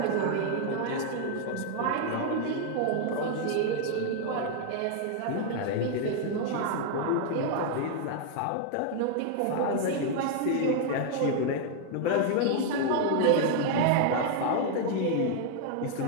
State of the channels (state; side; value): different; both; correlation 0.00